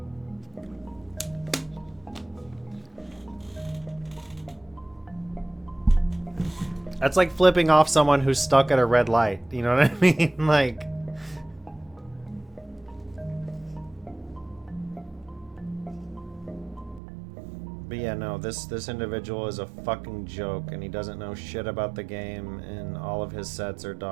That's like flipping off someone who's stuck at a red light. You know what I mean? Like... But yeah, no, this individual is a fucking joke, and he doesn't know shit about the game, and all of his sets are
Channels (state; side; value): drops out; left; at 17.0 s